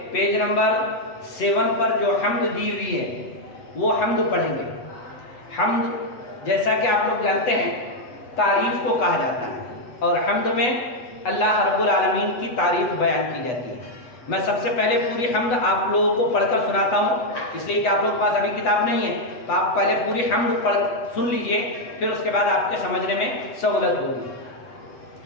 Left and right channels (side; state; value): right; late; 8.2 ms